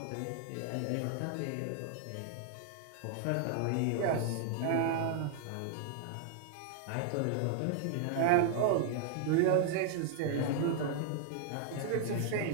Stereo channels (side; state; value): both; different; correlation 0.00